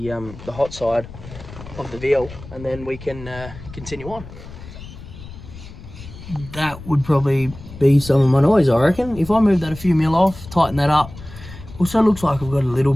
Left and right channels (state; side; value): noise; left; rumble, 15 dB below the sound